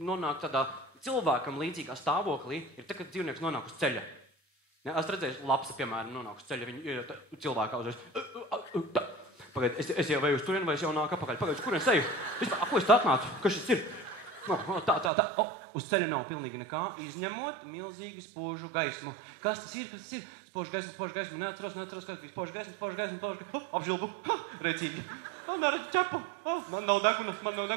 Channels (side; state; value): left; drops out; at 15.1 s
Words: nonāk tādā cilvēkam līdzīgā stāvoklī, ir tā, kad dzīvnieks nonāk uz ceļa. Ja, es redzēju, lapsa, piemēram, nonāk uz ceļa, viņi cilvēkā uzreiz. Pagaid, es jau veju uz turien, vai es jau nāku apakaļ? Pagaid, uz kurien seju? Ko es tā atnācu? Kas šis ir? Tā. Uz ceļa nav pilnīgi nekā, izņemot milzīgi spožu gaismu. Kas tas ir? Spožu gaismu. Neatceros, kas bija spožu gaismu. Apžilbu. Rēcīgi. Neredzu ķepu. Man nav